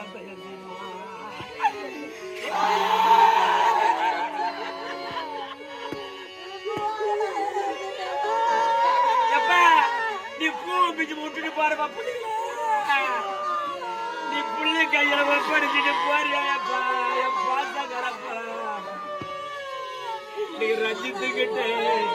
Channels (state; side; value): identical; both; correlation 1.00